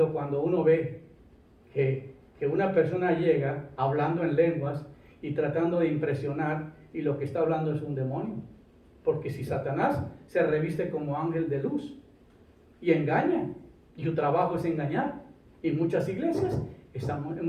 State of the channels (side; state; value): both; identical; correlation 1.00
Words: cuando uno ve que una persona llega hablando en lenguas y tratando de impresionar y lo que está hablando es un demonio. Porque si Satanás se reviste como ángel de luz y engaña, y su trabajo es engañar, y muchas iglesias